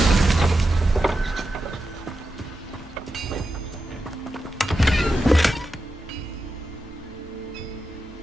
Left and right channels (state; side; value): normal; both; correlation 0.89